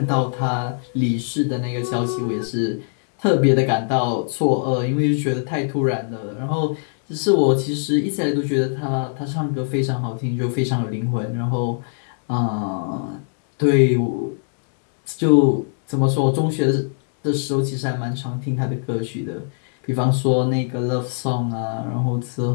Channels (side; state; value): right; silent; digital silence